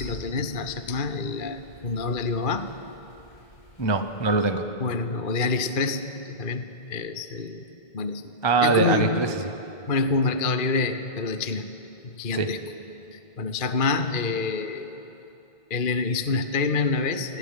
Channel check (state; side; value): late; right; 2.4 ms